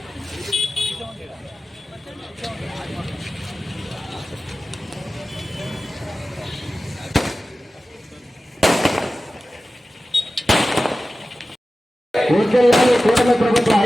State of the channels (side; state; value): both; normal; correlation 0.95